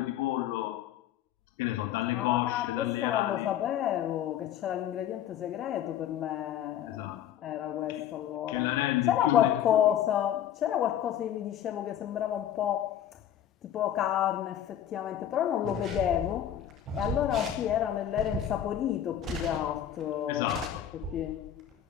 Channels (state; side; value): quieter; right; 10.5 dB